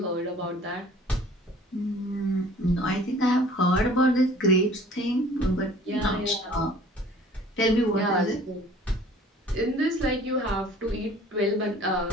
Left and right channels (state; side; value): normal; both; correlation 0.50